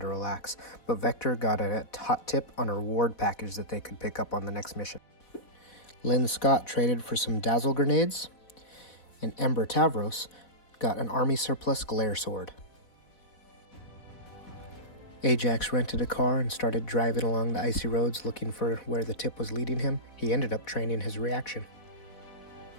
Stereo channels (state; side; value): late; right; 4.1 ms